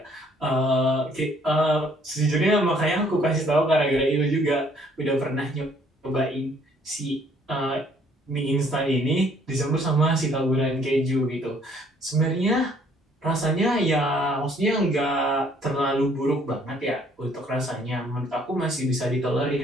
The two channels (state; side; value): normal; both; correlation 0.62